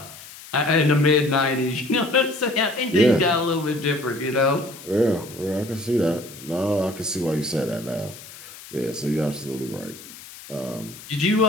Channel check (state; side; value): noise; left; hiss, 17 dB below the sound